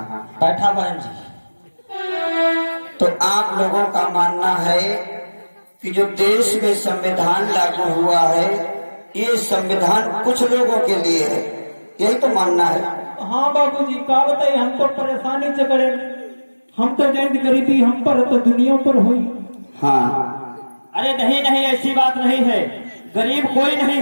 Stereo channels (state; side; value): inverted; both; correlation -1.00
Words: बैठा बहन जी। तो आप लोगों का मानना है कि जो देश में संविधान लागू हुआ है ये संविधान कुछ लोगों के लिए है, यही तो मानना है। हाँ बाबूजी का बताइए, हम तो परेशानी से करे, हम तो जैन गरीबी हम पर तो दुनिया पर हुई। हाँ अरे नहीं नहीं, ऐसी बात नहीं है, गरीब कोई नहीं